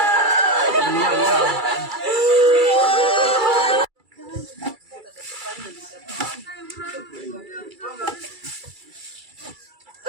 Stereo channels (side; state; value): left; late; 2.3 ms